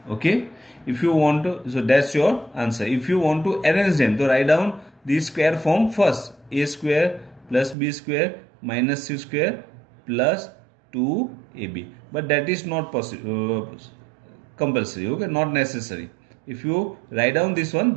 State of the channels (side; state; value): left; drops out; at 7.8 s